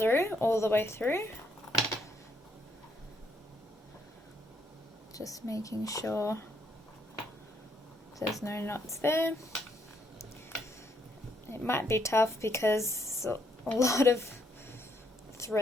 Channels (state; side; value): normal; both; correlation 0.72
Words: all the way through. Just making sure there's no knots there. It might be tough because a lot of